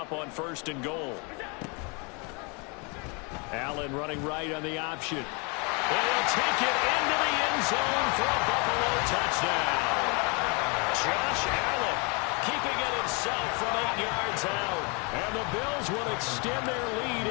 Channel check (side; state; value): right; quieter; 32.3 dB